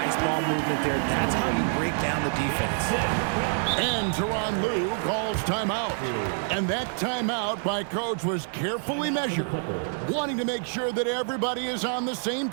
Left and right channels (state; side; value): silent; left; 60 dB below the other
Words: ball movement there. That's how you break down the defense. And Tyronn Lue calls timeout. And that timeout by coach was carefully measured, wanting to make sure that everybody is on the same